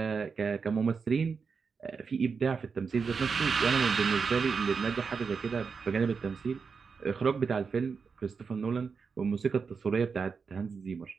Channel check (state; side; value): quieter; left; 5.4 dB